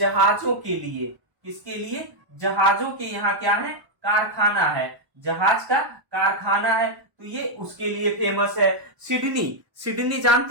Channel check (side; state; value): left; late; 1.0 ms